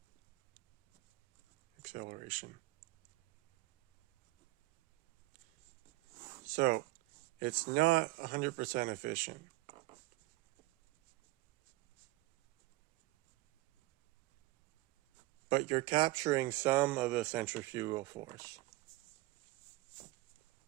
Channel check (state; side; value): quieter; left; 19.8 dB